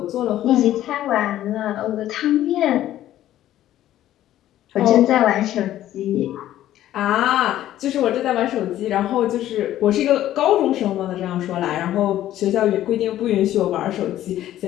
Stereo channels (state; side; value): quieter; right; 13.0 dB